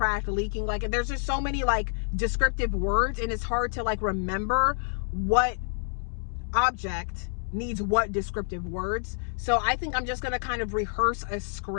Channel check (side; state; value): right; silent; digital silence